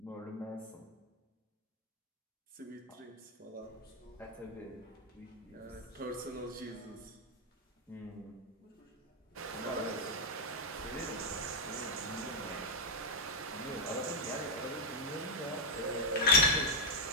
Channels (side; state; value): both; normal; correlation -0.01